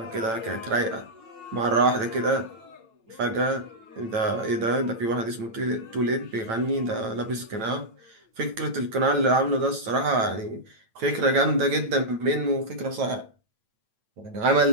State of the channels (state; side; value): late; left; 8.9 ms